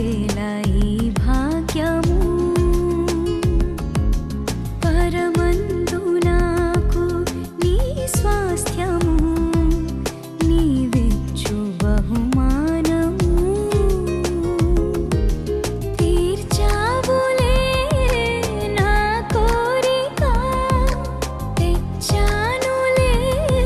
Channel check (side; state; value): both; identical; correlation 1.00